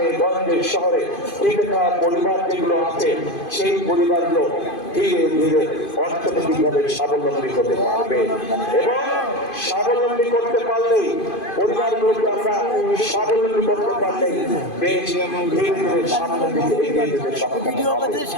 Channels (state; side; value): late; right; 2.5 ms